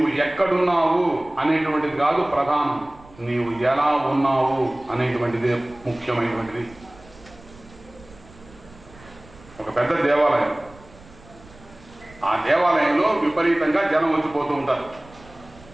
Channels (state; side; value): noise; right; rumble, 23 dB below the sound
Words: ఎక్కడున్నావు అనేటువంటిది కాదు ప్రధానం, నీవు ఎలా ఉన్నావు అనేటువంటిదే ముఖ్యమైనటువంటిది. ఒక పెద్ద దేవాలయం, ఆ దేవాలయంలో విపరీతంగా జనం వచ్చిపోతూ ఉంటారు.